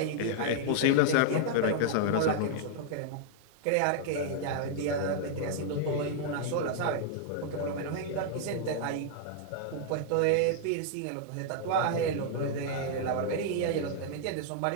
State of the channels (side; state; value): both; different; correlation -0.01